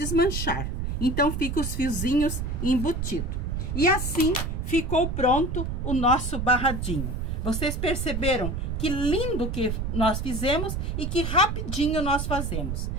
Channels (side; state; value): right; noise; rumble, 2 dB below the sound